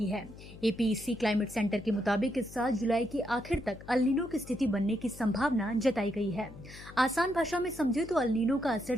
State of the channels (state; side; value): noise; left; hum, 17 dB below the sound